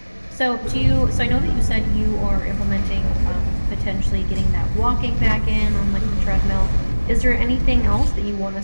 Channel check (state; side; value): inverted; both; correlation -1.00